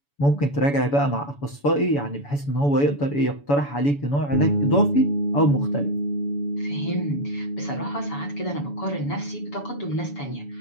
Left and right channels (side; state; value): right; late; 7.0 ms